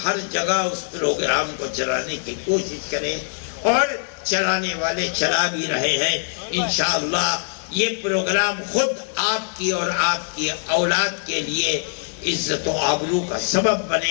ہر جگہ اس پروگرام کو چلانے کی کوشش کریں، اور چلانے والے چلا بھی رہے ہیں. انشاءاللہ یہ پروگرام خود آپ کی اور آپ کی اولاد کے لیے عزت و آبرو کا سبب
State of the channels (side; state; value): right; silent; digital silence